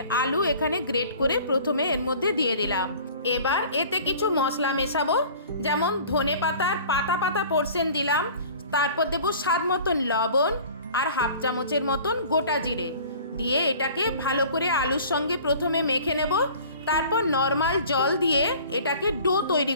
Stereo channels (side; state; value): both; inverted; correlation -0.46